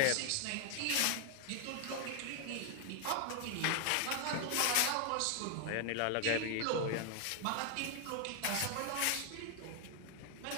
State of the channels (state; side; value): different; both; correlation 0.00